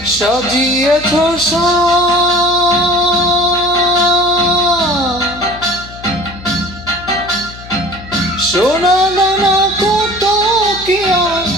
সাজিয়েছ সোনা দানা কত কি আর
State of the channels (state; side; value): noise; left; hum, 17 dB below the sound